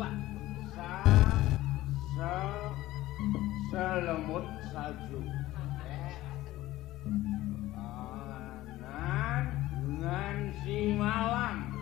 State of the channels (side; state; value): right; quieter; 16.4 dB